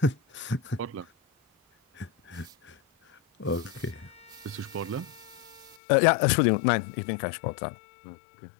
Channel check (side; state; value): right; drops out; at 5.8 s